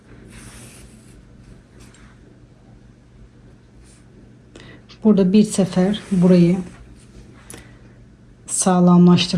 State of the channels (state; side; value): identical; both; correlation 1.00